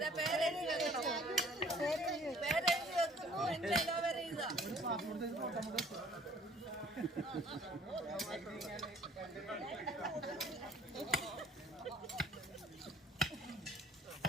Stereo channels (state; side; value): normal; both; correlation 0.55